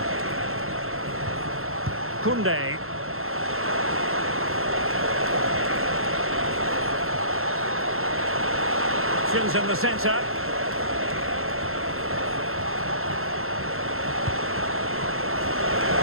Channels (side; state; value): left; late; 0.62 ms